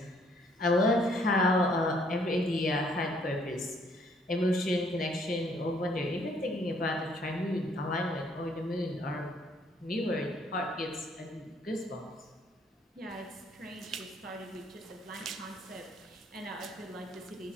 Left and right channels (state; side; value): normal; both; correlation 0.65